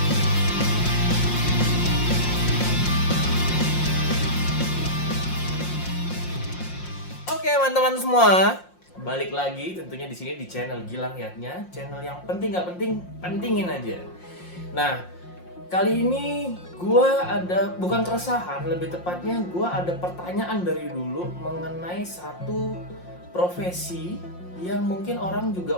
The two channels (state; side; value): late; right; 5.6 ms